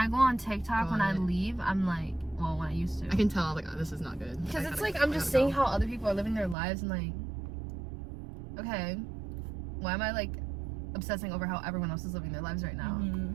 go on TikTok, go when on I it. leave, I'm like, well, when I used to. I can tell like, oh, this is not good. Because I it's gotta- like I'm I just gotta seeing go. how other people are living their lives and like, okay, why am I like obsessing over how everyone else is living their lives right now?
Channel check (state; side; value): drops out; left; at 6.6 s